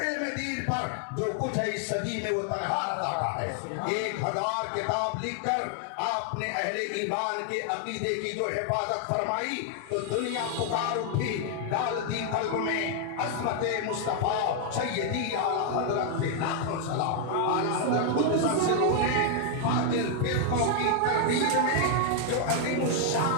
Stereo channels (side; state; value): both; different; correlation 0.00